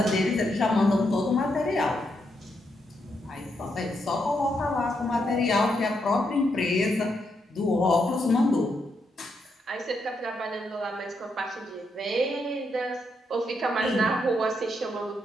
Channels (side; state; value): both; normal; correlation 0.80